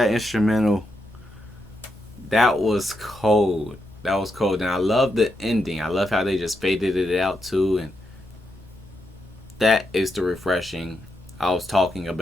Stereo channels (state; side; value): normal; both; correlation 0.83